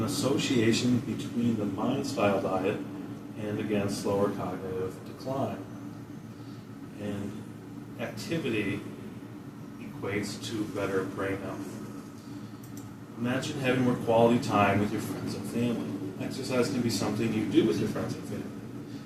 association between the mind-style diet and, again, slower cognitive decline. And activity equates to better brain health. Imagine having more quality time with your friends and family. Exercise can be something you do with your friends and family.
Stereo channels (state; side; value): identical; both; correlation 1.00